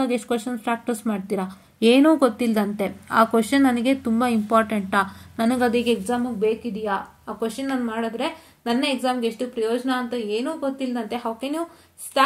ಎಷ್ಟು ಕ್ವಶನ್ಸ್ ಪ್ರಾಕ್ಟೀಸ್ ಮಾಡ್ತೀರಾ? ಏನೂ ಗೊತ್ತಿಲ್ಲದಂತೆ ಆ ಕ್ವಶನ್ ನನಗೆ ತುಂಬ ಇಂಪಾರ್ಟೆಂಟಾ, ನನಗೆ ಅದಕ್ಕೆ ಎಕ್ಸಾಮಿಗೆ ಬೇಕಿದೆಯಾ, ಆ ಕ್ವಶನ್ ನಾನು ಮಾಡಿದ್ರೆ ನನ್ನ ಎಕ್ಸಾಮ್ಗೆ ಎಷ್ಟು ಪ್ರಯೋಜನ ಅಂತ ಏನೂ ಗೊತ್ತಿಲ್ಲದಂತೆ how can you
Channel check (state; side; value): identical; both; correlation 1.00